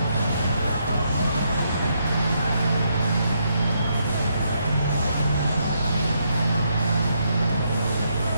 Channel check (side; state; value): both; inverted; correlation -0.77